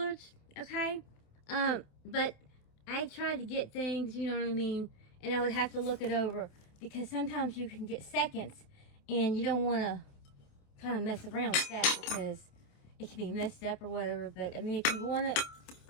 okay? But I tried to get things, you know what I mean, and I would have to look it over because sometimes you can get seconds and you don't want to kind of mess around with that because it can be messed up or whatever. But I mean, if you want it,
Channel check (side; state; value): right; late; 27 ms